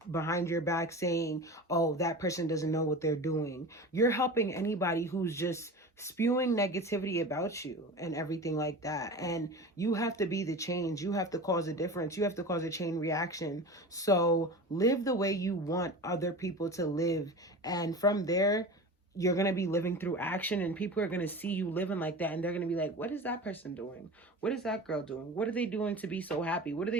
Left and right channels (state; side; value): normal; both; correlation 0.32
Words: behind your back saying, oh, that person doesn't know what they're doing. You're helping anybody who's just spewing negativity about you and everything like that. And you have to be the change. You have to cause a difference. You have to cause a chain reaction. So live the way you want other people to live. And from there, you're going to be living through action, and people are going to see you living like that. And they're going to be like, what is that person doing? What is that girl doing? What are they doing to be so happy? What are